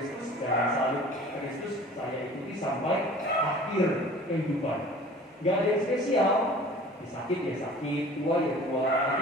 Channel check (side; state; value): both; normal; correlation 0.45